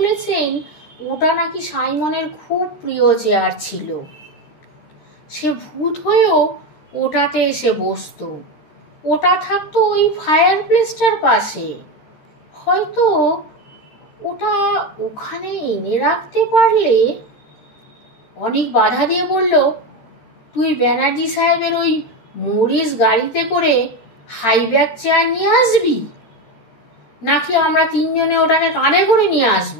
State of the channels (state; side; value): late; right; 13 ms